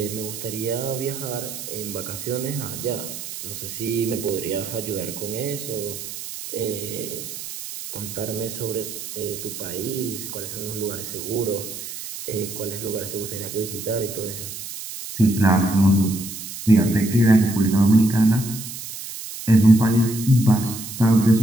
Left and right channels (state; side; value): noise; right; hiss, 9 dB below the sound